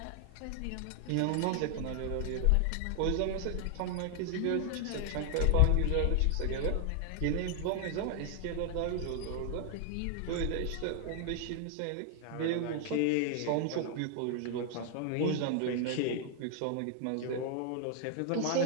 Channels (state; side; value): different; both; correlation 0.00